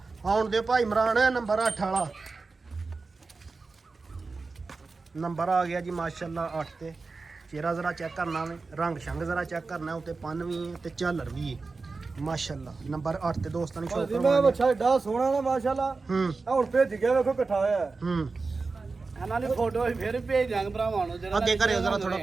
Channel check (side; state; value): left; quieter; 4.1 dB